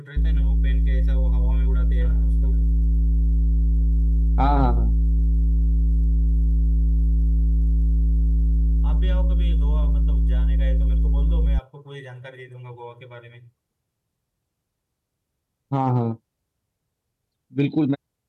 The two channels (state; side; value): identical; both; correlation 1.00